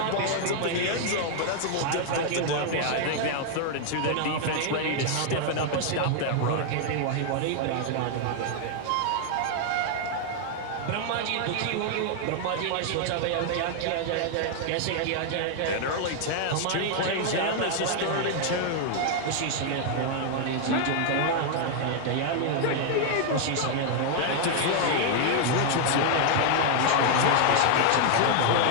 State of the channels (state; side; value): different; both; correlation 0.00